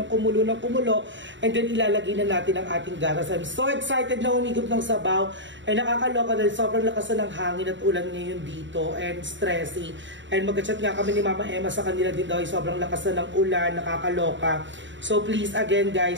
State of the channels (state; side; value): late; left; 0.54 ms